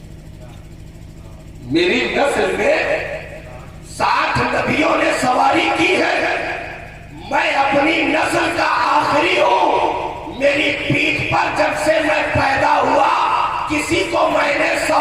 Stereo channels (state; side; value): identical; both; correlation 1.00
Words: میری نسل میں 60 نبیوں نے سواری کی ہے، میں اپنی نسل کا آخری ہوں، میری پیٹھ پر جب سے میں پیدا ہوا کسی کو میں نے